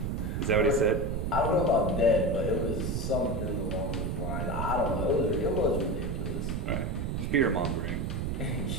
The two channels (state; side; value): noise; right; rumble, 1 dB below the sound